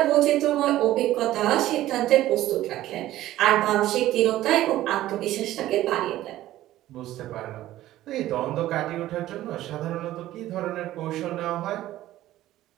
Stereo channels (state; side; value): quieter; left; 14.6 dB